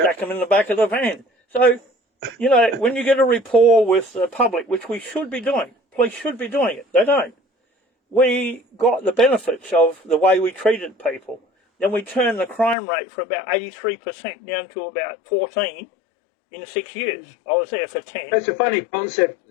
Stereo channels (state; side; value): drops out; right; at 12.8 s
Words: stack them in the back of the van. So, you know, when you get a rapport with the public, which we should be doing, police should be doing it, they don't. We got the benefits of the way we treated people. Then we turned the crime rate from about 83% down to about 14% in 6 years. I was there for 10. That's a funny